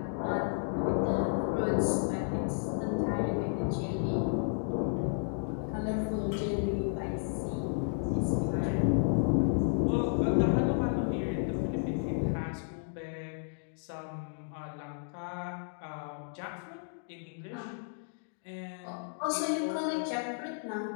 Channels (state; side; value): silent; right; digital silence